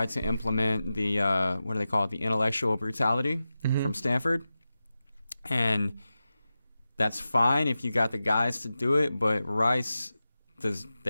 to implement the, what do they call it, the intellectual brutality from Stanford. And that's fine if you got the guys to do it, but Rice, talk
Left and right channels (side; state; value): both; inverted; correlation -0.93